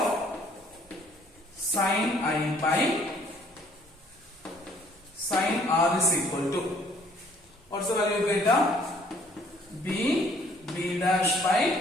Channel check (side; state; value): both; normal; correlation 0.60